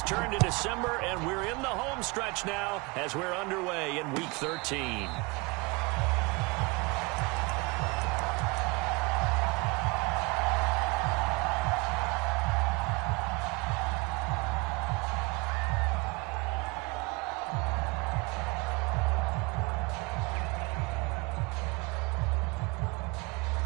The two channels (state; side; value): quieter; left; 26.7 dB